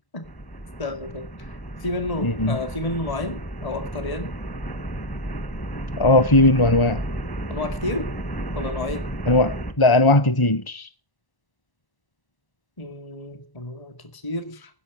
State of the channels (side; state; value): right; late; 1.0 ms